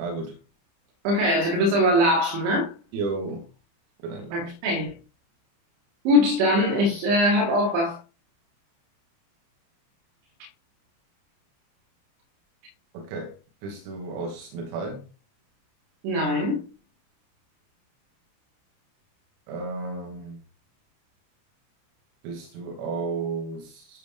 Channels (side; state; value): left; late; 30 ms